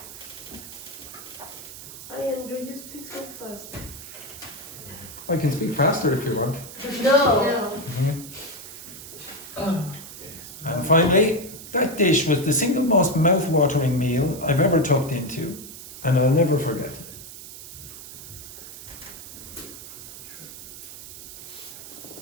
Hi, Andrew, you speak so fast. I can speak faster if you want. No. And finally, that dish was the single most mouth-watering meal I've ever tucked into, and I'll never forget it.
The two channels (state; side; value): noise; right; hiss, 13 dB below the sound